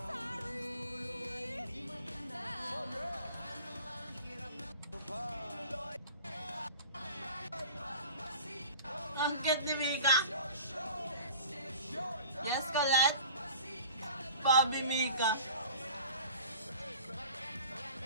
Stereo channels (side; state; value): both; inverted; correlation -0.43